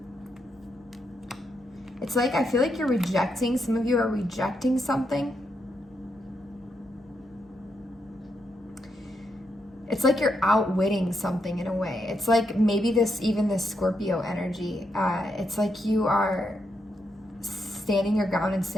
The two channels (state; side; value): normal; both; correlation 0.81